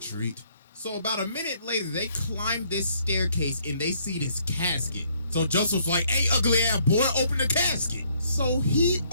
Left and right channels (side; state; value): both; inverted; correlation -0.67